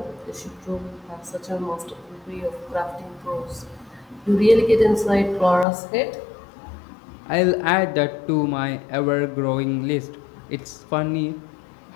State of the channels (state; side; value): drops out; right; at 5.7 s